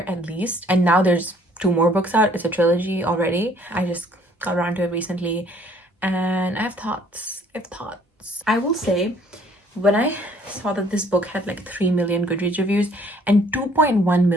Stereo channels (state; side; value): normal; both; correlation 0.59